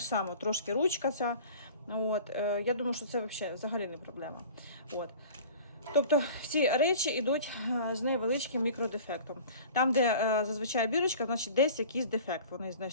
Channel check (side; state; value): both; inverted; correlation -0.42